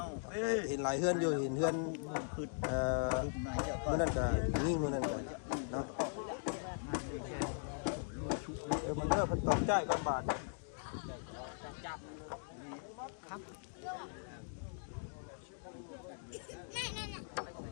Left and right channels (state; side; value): silent; right; digital silence